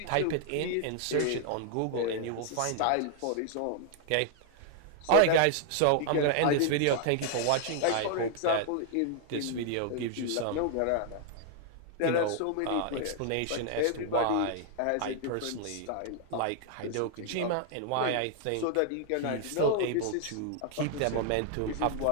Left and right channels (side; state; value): both; different; correlation 0.00